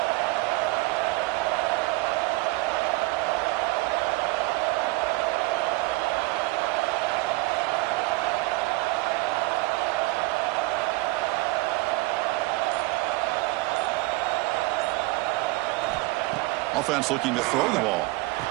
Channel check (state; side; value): quieter; left; 22.5 dB